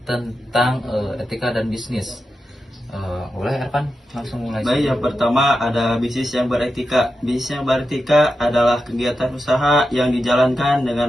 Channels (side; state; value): both; normal; correlation 0.89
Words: tentang etika dan bisnis. Boleh Ervan langsung mulai. Baik, yang pertama ada bisnis yang beretika. Bisnis yang beretika adalah kegiatan usaha yang dijalankan